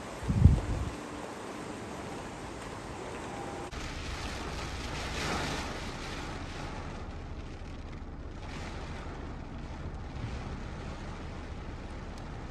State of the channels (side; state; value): both; identical; correlation 1.00